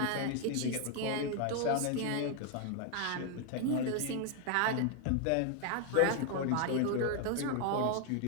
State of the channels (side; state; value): both; different; correlation 0.00